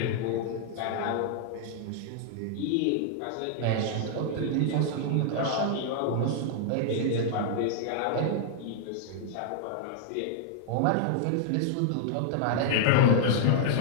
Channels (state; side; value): different; both; correlation -0.01